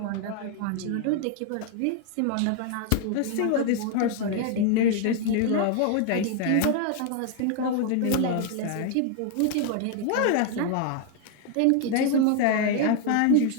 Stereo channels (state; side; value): different; both; correlation 0.00